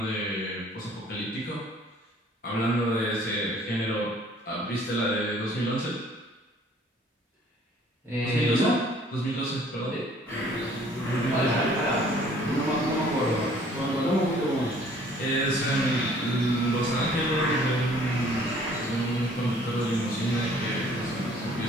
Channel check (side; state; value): both; normal; correlation 0.56